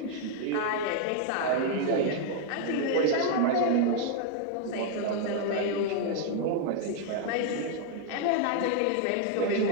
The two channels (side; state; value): both; different; correlation 0.00